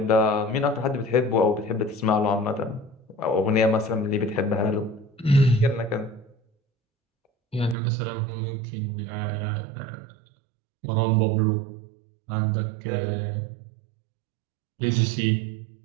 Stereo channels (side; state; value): left; drops out; at 7.8 s